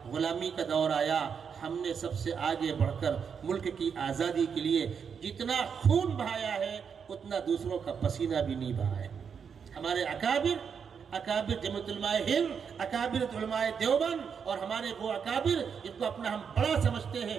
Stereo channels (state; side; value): quieter; left; 6.7 dB